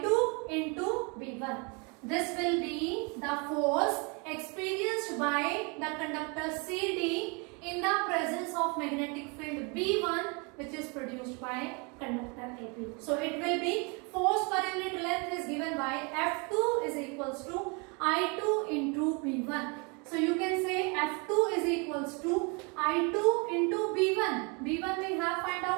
into B1. This will be the force experienced by the conductor CD in the presence of magnetic field B1, which is produced by conductor AB. So it will be force per unit length is given by F2 is equals to I2 into B1. So you can say F2 is equals to I2 into B1. B1 we have find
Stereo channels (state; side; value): quieter; left; 32.0 dB